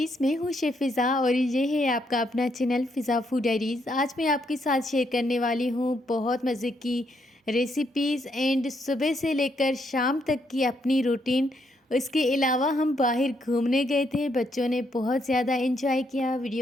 मैं हूँ शेफ़ फ़िज़ा और ये है आपका अपना चैनल फ़िज़ा फूड डायरीज़। आज मैं आपके साथ शेयर करने वाली हूँ बहुत मज़े की रेसिपीज़ एंड सुबह से लेकर शाम तक की अपनी रूटीन। इसके अलावा हम बाहर घूमने गए थे, बच्चों ने बहुत ज़्यादा एंजॉय किया।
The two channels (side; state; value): both; normal; correlation 0.75